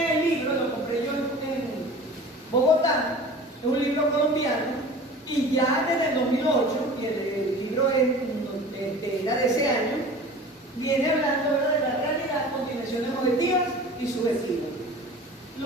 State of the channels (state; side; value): normal; both; correlation 0.40